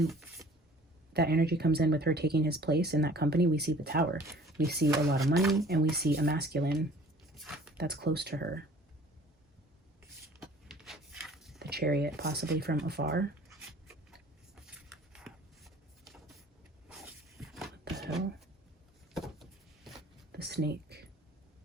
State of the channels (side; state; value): both; normal; correlation 0.50